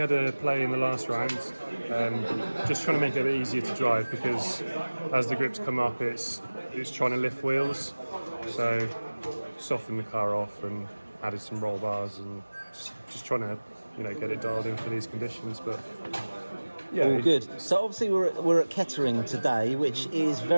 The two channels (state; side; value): inverted; both; correlation -1.00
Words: a play in the last round, just trying to make it a bit easier to drive, because as the grips come up, it's trying to lift wheels. So soften the car off and added some roll bars and just trying to get it dialed in for these conditions. But yeah, all good. So obviously we're at Kettering today, which is